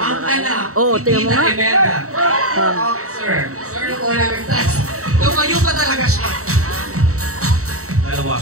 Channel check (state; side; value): late; left; 0.64 ms